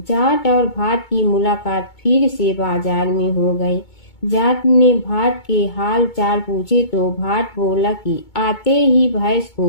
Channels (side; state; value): right; late; 2.2 ms